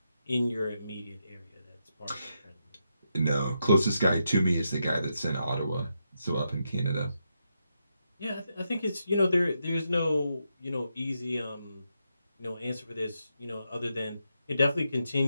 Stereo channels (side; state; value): both; inverted; correlation -0.84